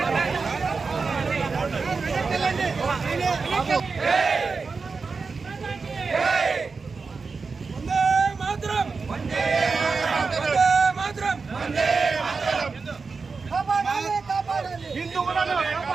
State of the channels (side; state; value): left; quieter; 4.6 dB